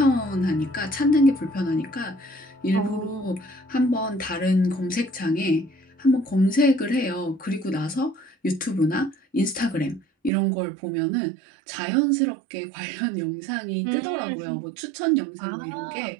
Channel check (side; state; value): left; drops out; at 10.3 s